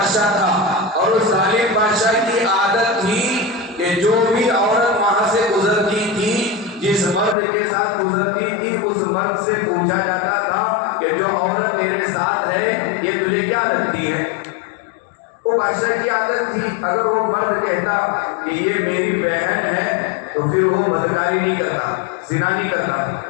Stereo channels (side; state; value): right; drops out; at 7.4 s